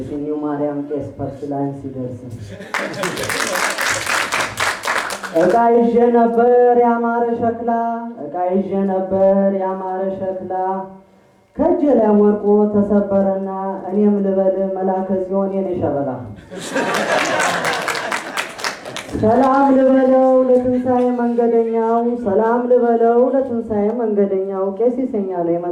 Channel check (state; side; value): identical; both; correlation 1.00